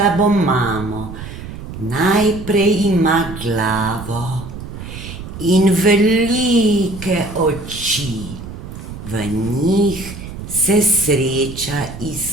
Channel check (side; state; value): right; noise; rumble, 11 dB below the sound